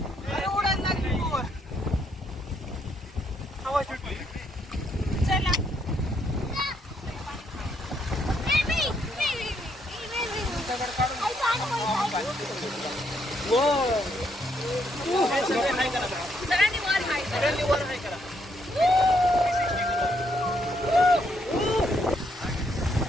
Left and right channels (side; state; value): both; normal; correlation 0.74